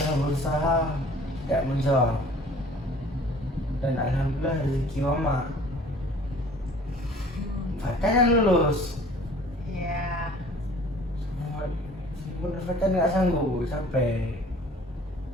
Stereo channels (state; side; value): normal; both; correlation 0.50